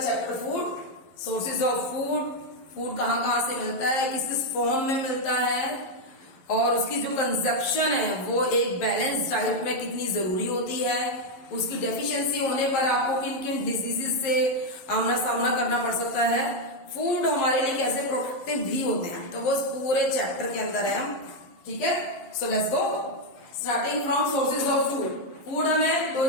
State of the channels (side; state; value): right; late; 11 ms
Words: food, sources of food. Food कहाँ कहाँ से मिलता है, किस किस फॉर्म में मिलता है और उसकी जो कंजप्शन है वो एक बैलेंस डाइट में कितनी जरूरी होती है। उसकी डेफिशिएंसी होने पर आपको किन किन डिजीजेस से आमना सामना करना पड़ सकता है। फूड हमारे लिए कैसे प्रोटेक्टिव भी होते हैं, तो वो पूरे चैप्टर के अंदर है हम। ठीक है, so let's go starting from sources of food. Food हमें दो